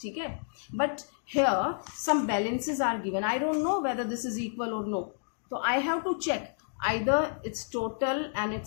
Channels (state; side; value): silent; right; digital silence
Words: है. But here some balances are given. I don't know whether this is equal or no. तो I have to check either its total and